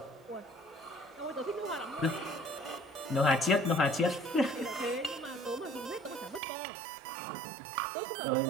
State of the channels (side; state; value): left; drops out; at 6.4 s